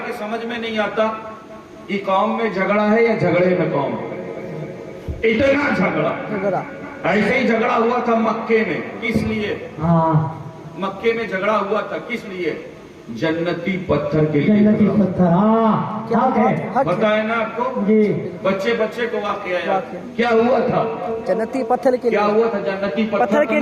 समझ में नहीं आता कि कौम में झगड़ा है या झगड़े में कौम, इतना झगड़ा। ऐसे ही झगड़ा हुआ था मक्के में, किस लिए? मक्के में झगड़ा हुआ था, किस लिए? जन्नती पत्थर के लिए। जन्नती पत्थर, पता है ना आपको जी? बच्चे को वाकया याद क्या हुआ था? जन्नती पत्थर के लिए। क्या हुआ था? जन्नती पत्थर के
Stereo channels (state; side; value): identical; both; correlation 1.00